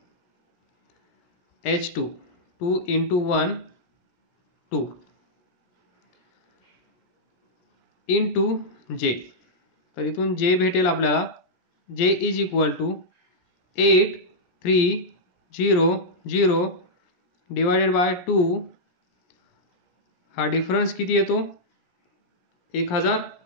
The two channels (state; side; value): late; right; 17 ms